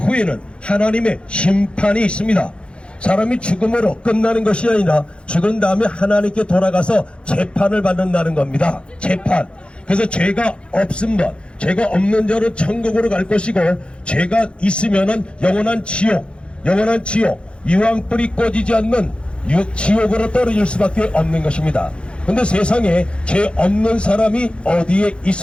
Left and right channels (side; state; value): right; late; 0.057 ms